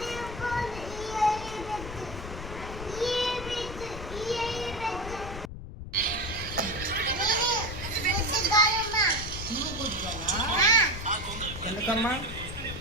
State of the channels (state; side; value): noise; left; rumble, 10 dB below the sound